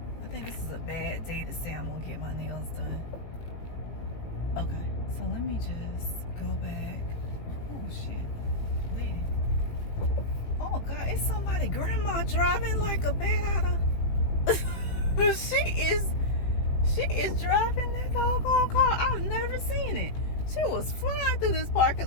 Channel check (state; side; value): late; right; 18 ms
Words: I think this is a bad day to say I'm gonna get my nails done. Okay, so let me just go back. Oh shit, lady. Oh God, it's somebody grandma driving like a bat out of. She is driving that doggone car. I've never seen it. She was flying through this parking